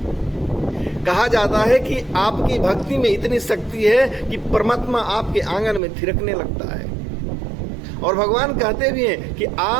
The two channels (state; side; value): drops out; left; at 5.8 s